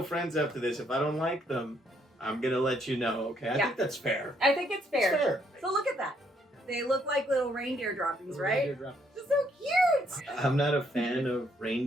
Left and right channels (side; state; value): both; normal; correlation 0.71